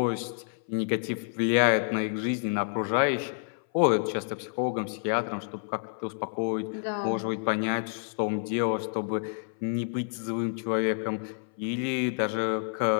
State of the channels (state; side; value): silent; right; 58 dB below the other